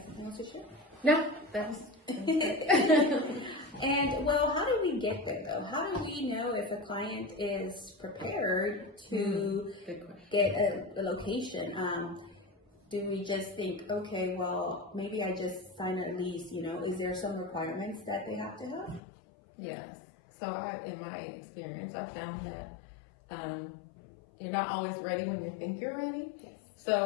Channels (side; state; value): right; drops out; at 19.0 s